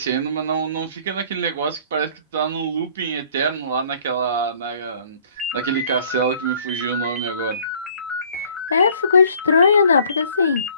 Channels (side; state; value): both; inverted; correlation -0.56